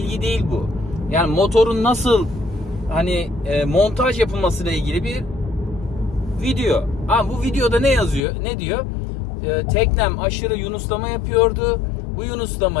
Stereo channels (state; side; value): drops out; right; at 8.2 s